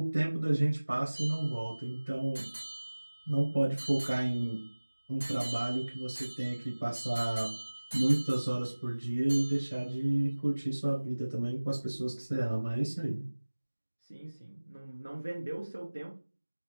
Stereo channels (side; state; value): both; inverted; correlation -1.00